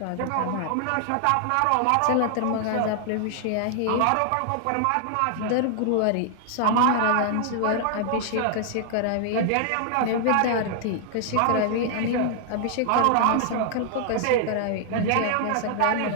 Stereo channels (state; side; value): different; both; correlation 0.00